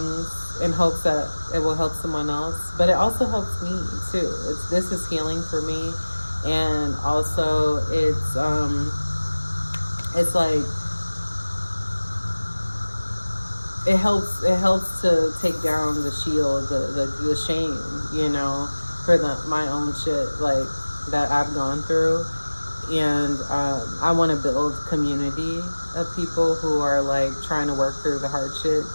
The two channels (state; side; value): inverted; both; correlation -1.00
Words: in hopes that it will help someone else, but it also helps me too. This is healing for me, and also it's like it helps to take down the shield, the shame, for my own shit, like, that I've gone through. And I want to build community of people who are like trying to work through the hardship